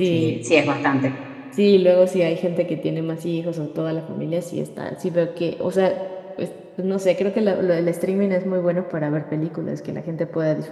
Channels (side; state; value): both; identical; correlation 1.00